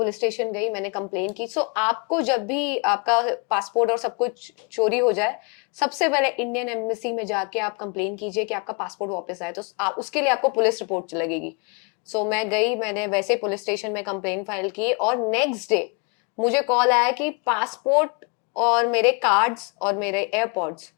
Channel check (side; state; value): right; quieter; 34.2 dB